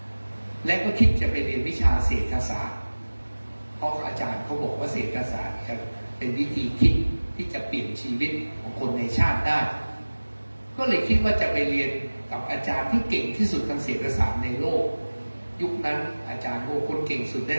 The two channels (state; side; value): inverted; both; correlation -1.00